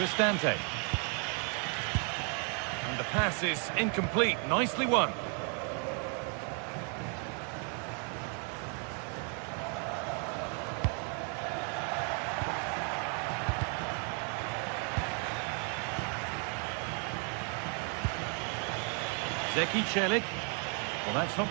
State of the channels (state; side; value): quieter; left; 39.9 dB